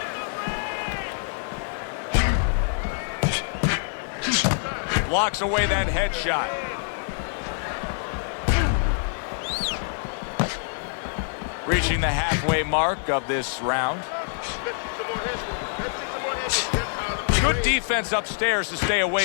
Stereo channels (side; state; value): right; silent; digital silence